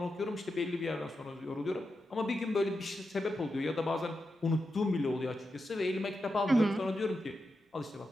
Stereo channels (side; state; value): both; normal; correlation 0.88